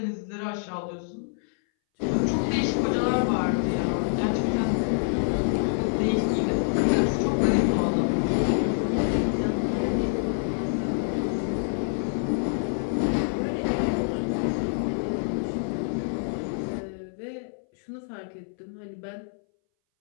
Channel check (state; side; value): silent; right; 60 dB below the other